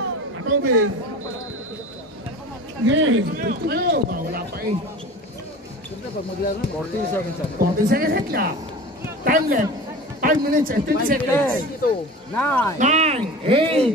Atubig. Yay! Ito kayo. Wala pa eh. 14 seconds. 14 seconds lang. Time left. 5 minutes and 20 seconds. 9, 9,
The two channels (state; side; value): normal; both; correlation 0.36